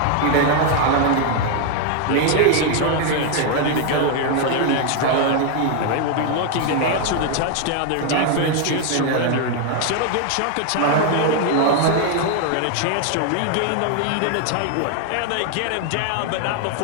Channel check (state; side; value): different; both; correlation 0.00